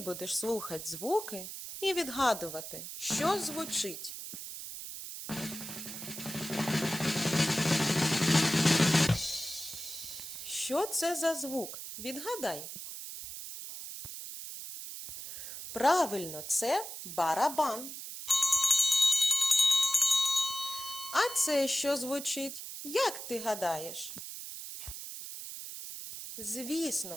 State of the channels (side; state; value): right; noise; hiss, 9 dB below the sound